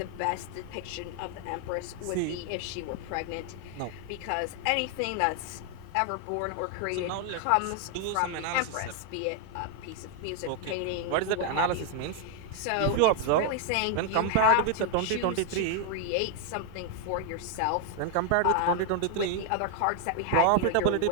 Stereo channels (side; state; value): both; different; correlation 0.00